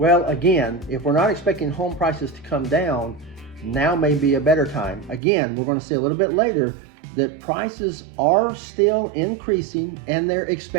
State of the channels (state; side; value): drops out; left; at 5.2 s